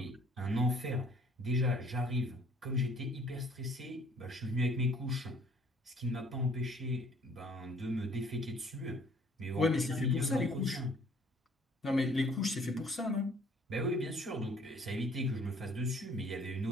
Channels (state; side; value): normal; both; correlation 0.58